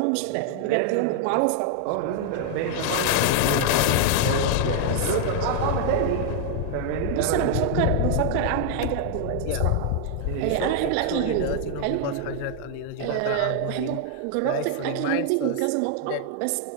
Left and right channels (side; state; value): both; different; correlation 0.00